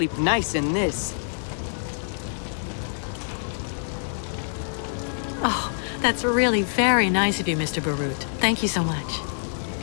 nice in this. Oh, that's really very nice of you, Mr. Barut. Thank you so much.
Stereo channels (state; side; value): silent; right; digital silence